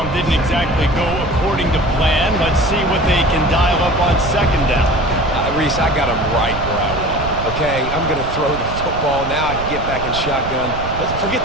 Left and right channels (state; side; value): noise; right; rumble, 8 dB below the sound